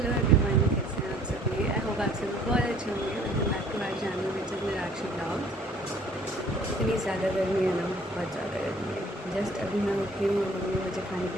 Hello everyone, कैसे हैं आप सभी। आई होप आप सभी बहुत अच्छे होंगे। Welcome back to our channel which is Nirakshi blog. इतनी ज़्यादा गर्मी है ना, बहुत ज़्यादा गर्मी है। जस्ट अभी मैं उठी हूँ और मम्मी मुझे खाने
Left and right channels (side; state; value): both; normal; correlation 0.56